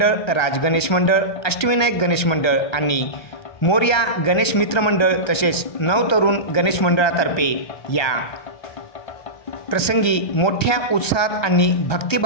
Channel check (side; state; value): right; late; 1.3 ms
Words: राज गणेश मंडळ, अष्टविनायक गणेश मंडळ आणि मोरया गणेश मित्र मंडळ तसेच नवतरुण गणेश मंडळातर्फे या प्रसंगी मोठ्या उत्साहात आणि